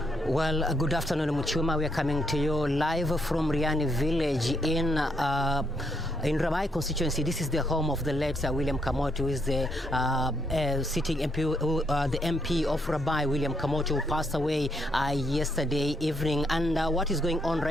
Well, good afternoon, Muchuma. We are coming to you live from Riani village in Rabai constituency. This is the home of the late William Kamoti, who is the sitting MP, the MP of Rabai, William Kamoti, who passed away yesterday evening. And what is going on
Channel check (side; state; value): both; normal; correlation 0.75